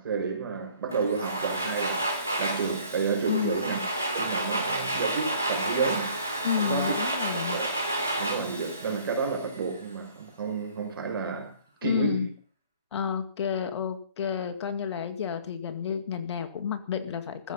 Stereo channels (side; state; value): both; inverted; correlation -0.53